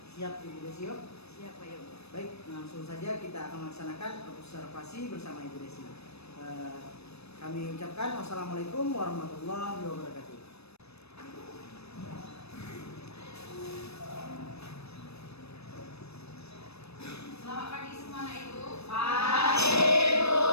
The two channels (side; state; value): right; late; 0.79 ms